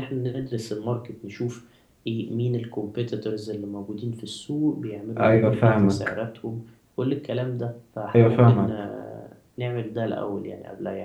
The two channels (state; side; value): identical; both; correlation 1.00